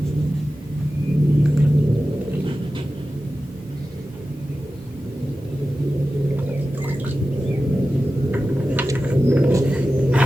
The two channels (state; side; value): normal; both; correlation 0.94